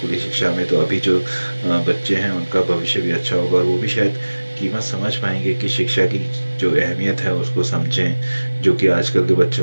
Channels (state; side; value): inverted; both; correlation -1.00